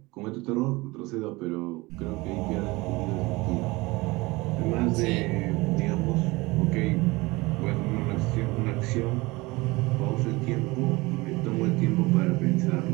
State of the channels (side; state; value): left; quieter; 22.5 dB